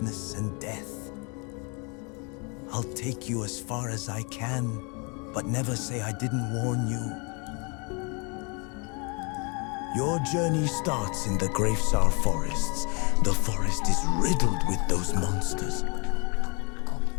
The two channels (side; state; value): right; quieter; 33.0 dB